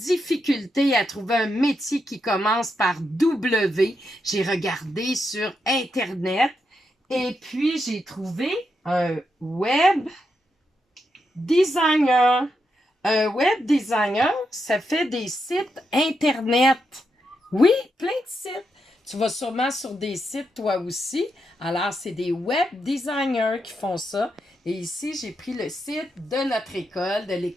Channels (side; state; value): both; normal; correlation 0.84